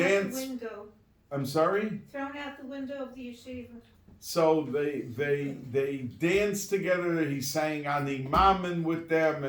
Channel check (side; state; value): both; identical; correlation 1.00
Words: out the window. I'm sorry? Thrown out the window of the yeshiva. So they danced together. He sang Ani Mamen with them.